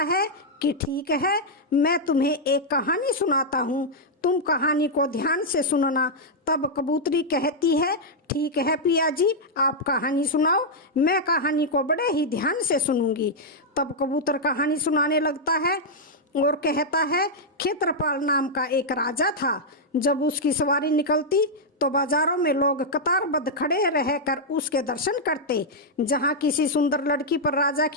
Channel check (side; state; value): both; normal; correlation -0.04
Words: कि ठीक है, मैं तुम्हें एक कहानी सुनाता हूँ, तुम कहानी को ध्यान से सुनना। तब कबूतरी कहती है, ठीक है पिया जी, आप कहानी सुनाओ, मैं कहानी को बड़े ही ध्यान से सुनूंगी। तब कबूतर कहानी सुनाने लगता है और कहता है, क्षेत्रपाल नाम का एक राजा था। जब उसकी सवारी निकलती तो बाजारों में लोग कतारबद्ध खड़े रहकर उसके दर्शन करते। जहाँ किसी सुंदर लड़की पर राजा